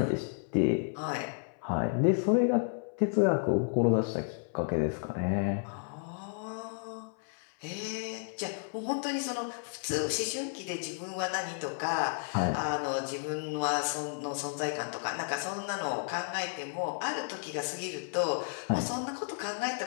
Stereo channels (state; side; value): silent; right; 56 dB below the other